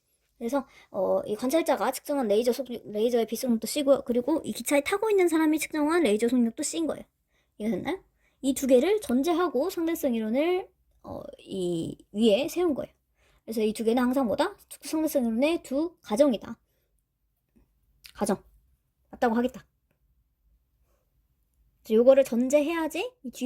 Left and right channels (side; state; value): both; identical; correlation 1.00